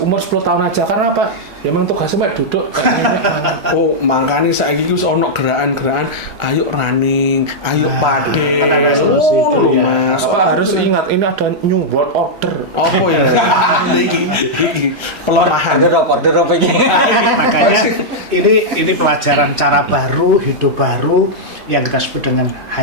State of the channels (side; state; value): left; late; 3.0 ms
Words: 10 tahun aja karena apa? Memang tugasnya Pak duduk. Oh, makanya saiki ku ono gerakan-gerakan ayo running, ayo pade. Kan ada solusi itu ya. Apa harus ingat ini ada new world order. Oh iya. Iki pelemahan. Order apa ini? Makanya ini pelajaran cara baru, hidup baru yang kita sebut dengan